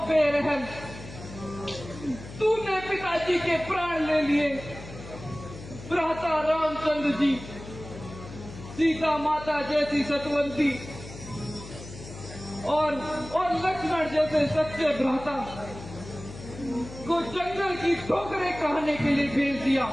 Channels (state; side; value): noise; left; hum, 14 dB below the sound